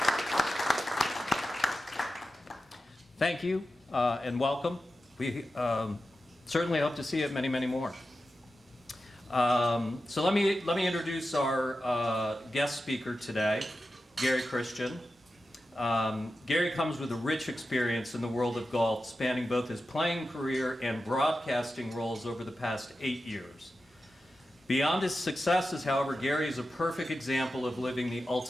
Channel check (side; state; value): both; normal; correlation 0.92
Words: Thank you and welcome. We certainly hope to see you at many, many more. So let me introduce our guest speaker today, Gary Christian. Gary comes with a rich experience in the world of golf, spanning both his playing career and broadcasting roles over the past 8 years. Beyond his successes, however, Gary is a perfect example of living the